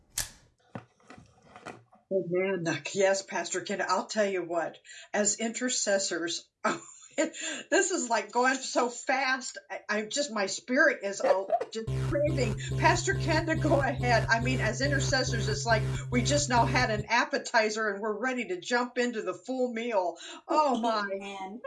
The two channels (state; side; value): identical; both; correlation 1.00